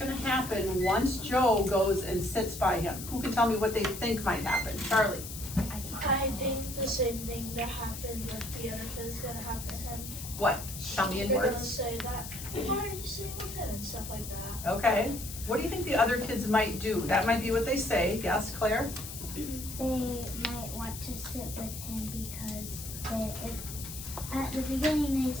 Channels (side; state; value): left; noise; hiss, 10 dB below the sound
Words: happen once Joe goes and sits by him. Who can tell me what they think might happen? Charlie? I think the same thing that happened with the other kid is gonna happen to him. What? Tell me in They're gonna words. say that, why are you sitting with him and stuff like that. Okay. What do you think the other kids might do? That might be what they say. Yes, Claire? They might want to sit with him because at the beginning they